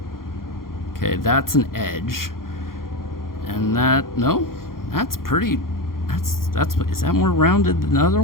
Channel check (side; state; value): right; late; 0.92 ms